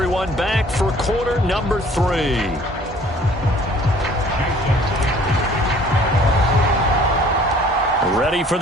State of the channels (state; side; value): normal; both; correlation 0.54